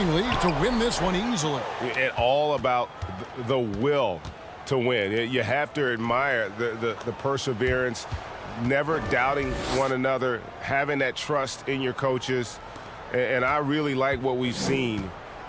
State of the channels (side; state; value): both; identical; correlation 1.00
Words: to win this one easily. It's all about the will to win. You have to admire the perseverance, never doubting one another, having that trust in your coaches, and I really like what we've seen